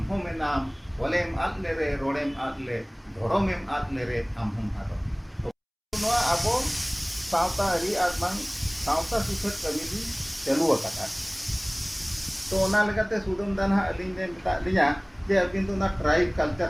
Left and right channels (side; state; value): both; identical; correlation 1.00